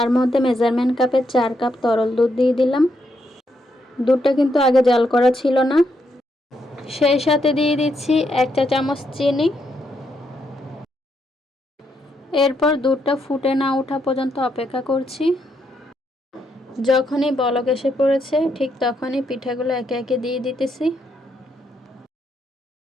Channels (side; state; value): both; normal; correlation 0.78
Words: মধ্যে মেজারমেন্ট কাপের 4 কাপ তরল দুধ দিয়ে দিলাম। দুধটা কিন্তু আগে জাল করা ছিল না। সেই সাথে দিয়ে দিচ্ছি 1 চা চামচ চিনি। এরপর দুধটা ফুটে না ওঠা পর্যন্ত অপেক্ষা করছি। যখনই বলক এসে পড়েছে ঠিক তখনই পিঠাগুলো একে একে দিয়ে দিতেছি।